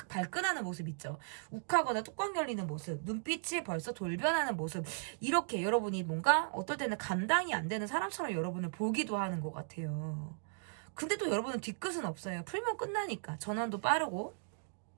발끈하는 모습 있죠. 욱하거나 뚜껑 열리는 모습, 눈빛이 벌써 돌변하는 모습, 이렇게 여러분이 뭔가 어떨 때는 감당이 안 되는 사람처럼 여러분을 보기도 하는 것 같아요. 근데 또 여러분은 뒤끝은 없어요. 풀면 끝나니까. 전환도 빠르고.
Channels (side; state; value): left; silent; digital silence